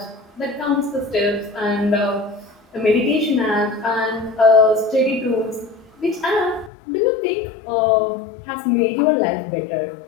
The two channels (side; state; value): right; drops out; at 6.7 s